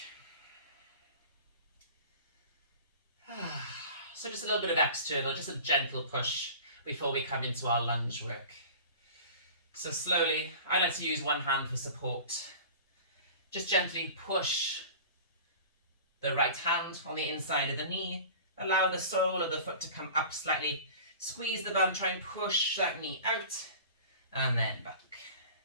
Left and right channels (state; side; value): inverted; both; correlation -0.39